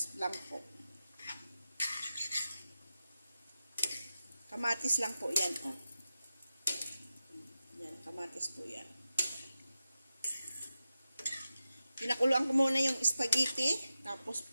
lang po. Kamatis lang po yan. Oh. Yan, kamatis po yan. Pinakuluan ko muna yung spaghetti. Tapos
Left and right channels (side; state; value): both; inverted; correlation -0.91